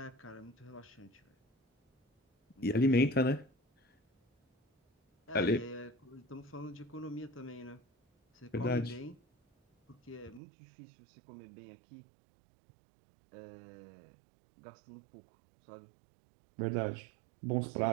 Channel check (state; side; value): drops out; left; at 10.4 s